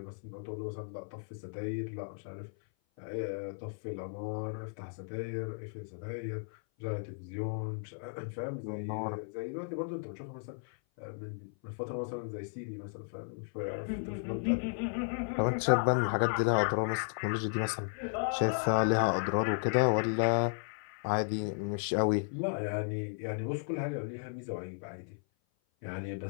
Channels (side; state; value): right; silent; 55 dB below the other